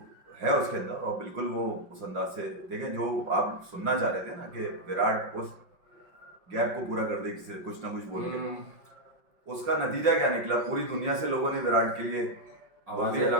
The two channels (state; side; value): late; left; 5.6 ms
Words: है उसके अंदर। और बिल्कुल वो उस अंदाज से देखें जो आप सुनना चाह रहे थे ना कि विराट उस गैप को पूरा कर दे किसी कुछ ना कुछ बोल के, उसका नतीजा क्या निकला, पूरी दुनिया से लोगों ने विराट के लिए आवाजें